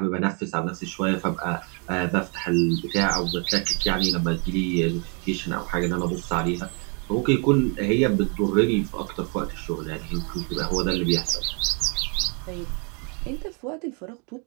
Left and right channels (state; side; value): quieter; left; 37.0 dB